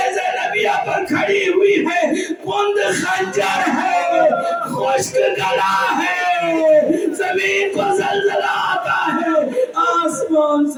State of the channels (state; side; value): identical; both; correlation 1.00